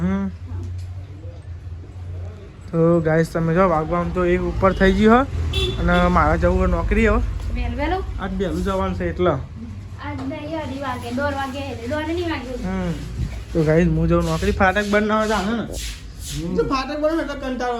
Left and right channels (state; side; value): identical; both; correlation 1.00